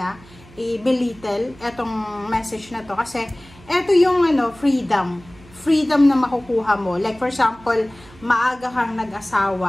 i-belittle etong message na to, kasi eto yung freedom na makukuha mo. Like for example, maaga kang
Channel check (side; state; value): right; noise; hum, 23 dB below the sound